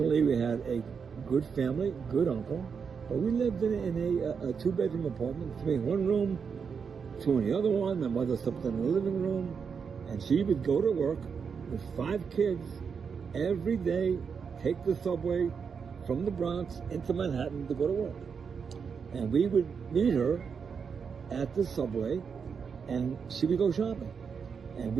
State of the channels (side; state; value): left; quieter; 6.2 dB